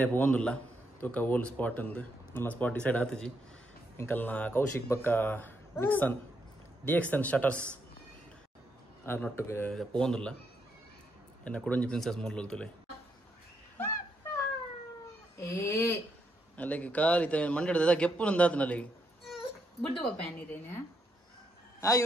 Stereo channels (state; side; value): normal; both; correlation 0.78